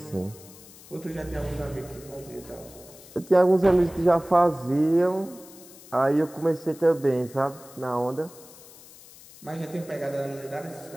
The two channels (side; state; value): left; noise; hiss, 20 dB below the sound